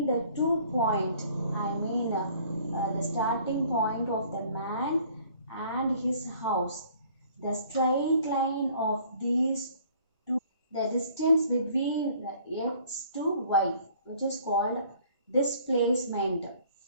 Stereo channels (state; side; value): inverted; both; correlation -0.55